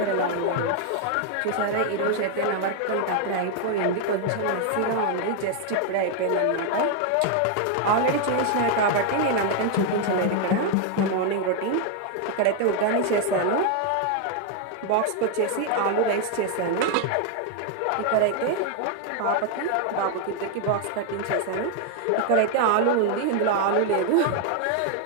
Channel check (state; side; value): different; both; correlation 0.01